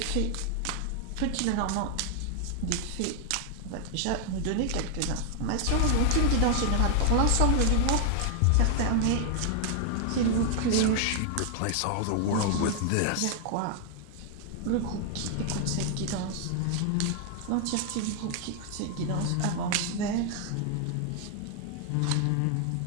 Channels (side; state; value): both; different; correlation 0.00